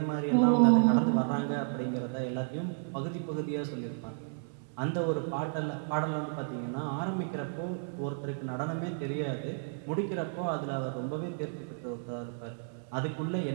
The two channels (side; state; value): left; silent; 56 dB below the other